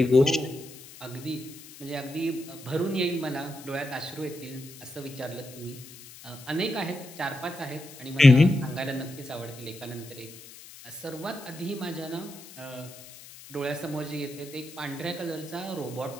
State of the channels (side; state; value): left; noise; hiss, 18 dB below the sound